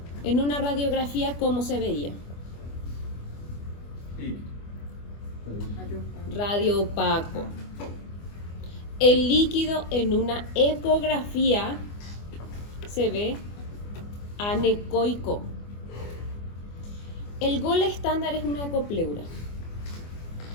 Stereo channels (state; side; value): late; right; 24 ms